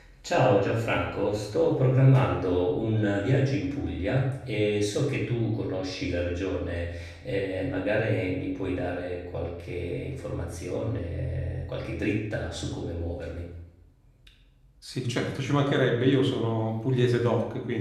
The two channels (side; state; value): both; identical; correlation 1.00